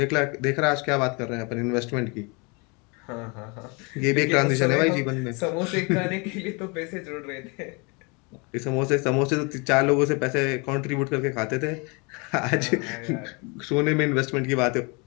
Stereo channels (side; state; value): right; quieter; 30.7 dB